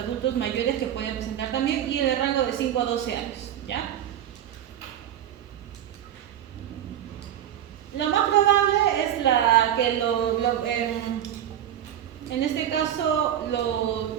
mayores que pueden presentar también, y en el rango de 5 a 12 años. ¿Ya? Lo más probable es que en este caso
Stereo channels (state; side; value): quieter; left; 10.7 dB